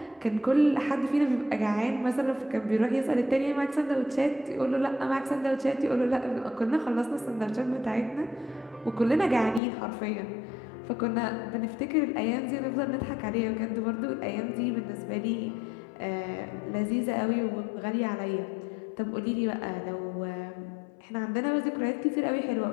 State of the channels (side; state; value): right; drops out; at 9.6 s